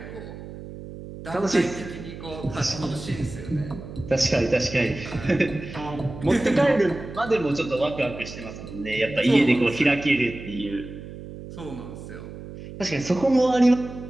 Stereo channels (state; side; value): noise; right; hum, 12 dB below the sound